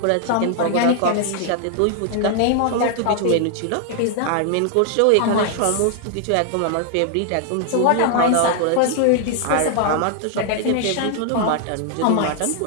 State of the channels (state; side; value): different; both; correlation 0.00